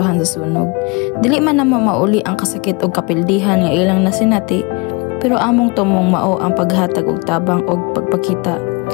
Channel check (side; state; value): right; quieter; 28.4 dB